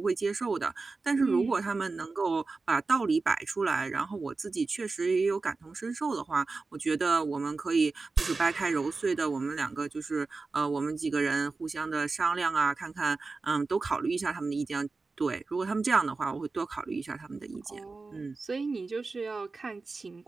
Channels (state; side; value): quieter; left; 3.9 dB